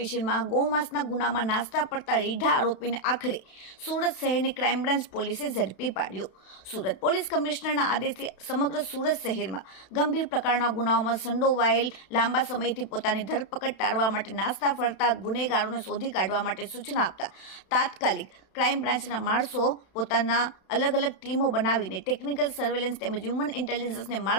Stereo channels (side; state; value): right; late; 32 ms